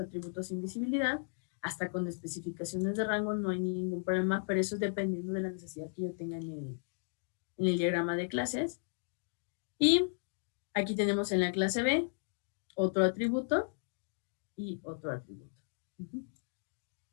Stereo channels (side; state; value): right; silent; digital silence